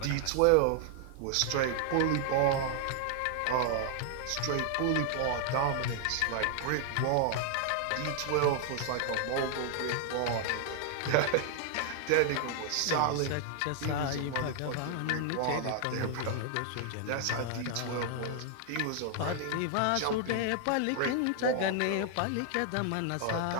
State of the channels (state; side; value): different; both; correlation 0.00